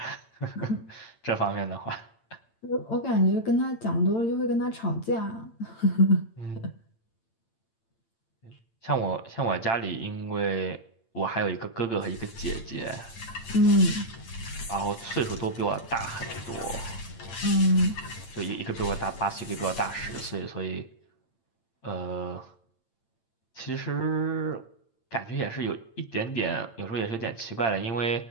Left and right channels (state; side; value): late; right; 8.8 ms